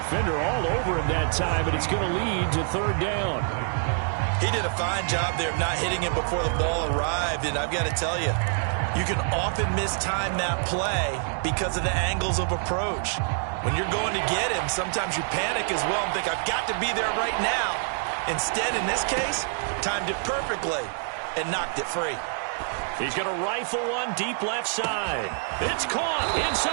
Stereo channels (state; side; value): silent; left; 61 dB below the other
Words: all over him that time, and it's going to lead to 3rd down. He did a fine job there of not hitting him before the ball arrived, and I've got to tell you, you can often mistime that play because of the angles of approach. When you're going to get him, sometimes you panic as well and think, I've got to be there right now. Instead, in this case, timed it perfectly and knocked it free. He's going to rifle one deep left side. It's caught